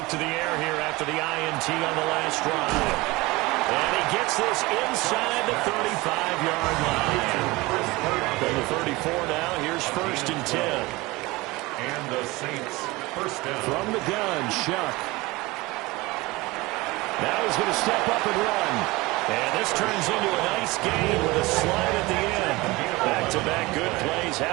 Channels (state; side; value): quieter; left; 21.8 dB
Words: to the air here after the INT on the last drive. And he gets this inside the 35-yard line. From the 34 now, here's 1st and 10. And the Saints first down. From the gun, Shuck. Now he's going to step up and run. And this turns into a nice gain with a slide at the end. Back-to-back good plays